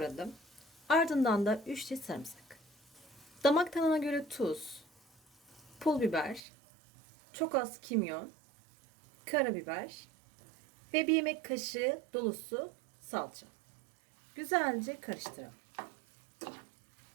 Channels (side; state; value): left; drops out; at 6.4 s